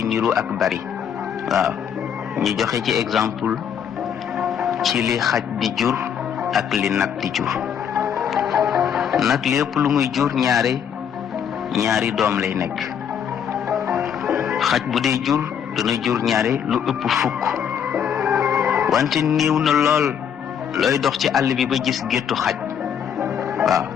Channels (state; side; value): quieter; right; 8.2 dB